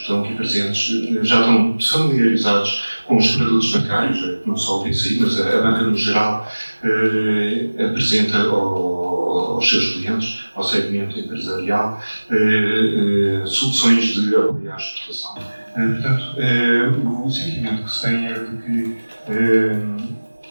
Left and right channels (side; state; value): both; inverted; correlation -1.00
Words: estão aqui presentes, já estão familiarizados com os produtos bancários, não só o BCI, mas a banca no geral apresenta aos seus clientes, ao segmento empresarial, soluções de apoio à exportação. Portanto, o sentimento que se tem é de que